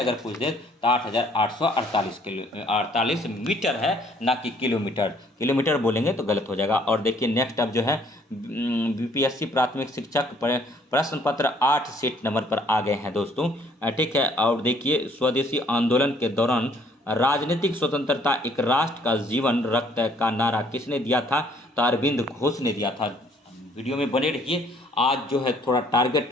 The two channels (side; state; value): both; normal; correlation 0.62